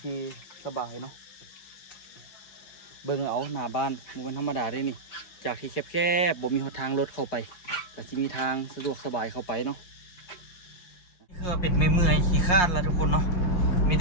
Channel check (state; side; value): late; right; 5.6 ms